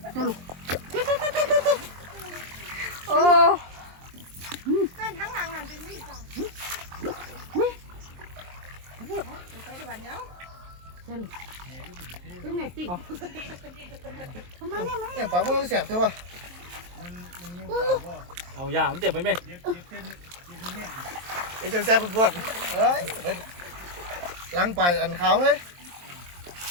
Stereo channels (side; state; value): left; late; 23 ms